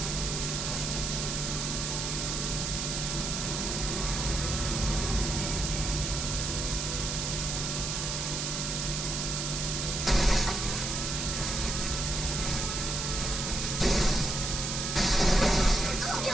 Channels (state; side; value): noise; right; hiss, 2 dB below the sound